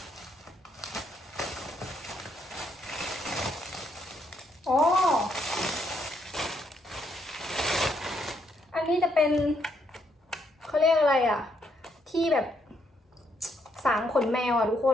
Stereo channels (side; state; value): both; normal; correlation 0.74